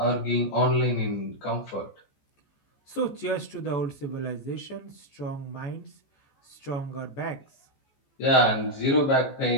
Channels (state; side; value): late; right; 14 ms